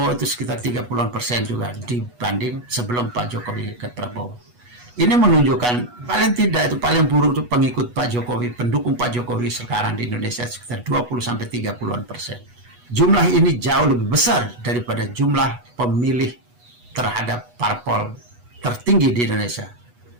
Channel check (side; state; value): left; late; 8.2 ms